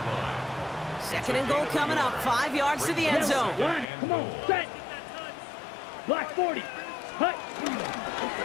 2nd and goal coming up. 5 yards to the end zone. Line, come on, set. Black 40. Hut.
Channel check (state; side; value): drops out; right; at 3.9 s